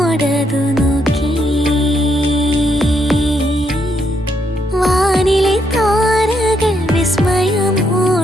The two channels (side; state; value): both; normal; correlation 0.76